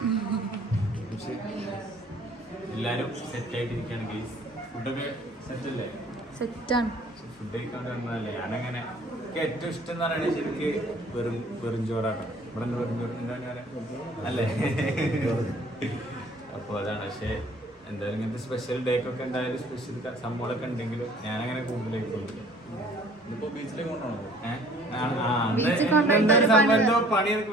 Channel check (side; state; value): both; normal; correlation 0.54